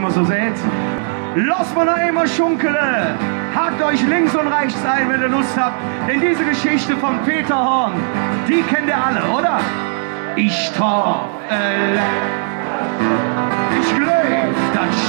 so sieht. Los mal noch einmal schunkele, hakt euch links und rechts ein, wenn ihr Lust habt, denn diese Geschichte von Peter Horn, die kennt ihr alle, oder? Ich traf, ich glaub, das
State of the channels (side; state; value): left; silent; digital silence